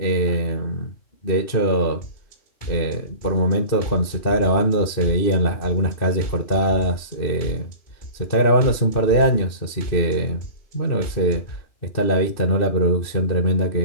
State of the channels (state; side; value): late; right; 2.6 ms